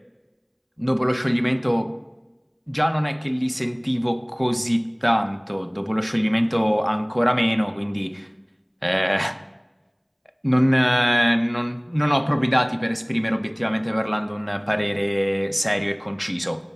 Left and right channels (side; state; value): both; identical; correlation 1.00